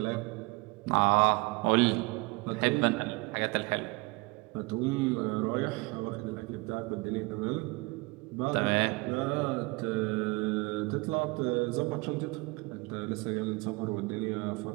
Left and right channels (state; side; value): quieter; left; 25.4 dB